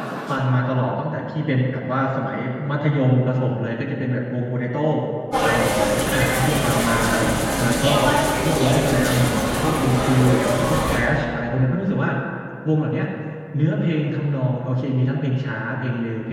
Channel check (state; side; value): identical; both; correlation 1.00